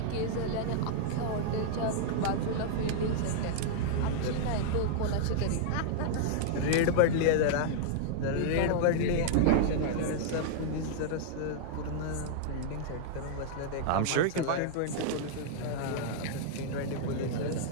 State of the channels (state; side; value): different; both; correlation -0.01